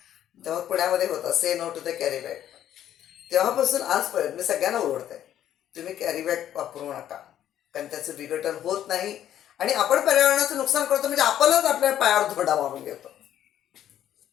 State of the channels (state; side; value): quieter; right; 11.1 dB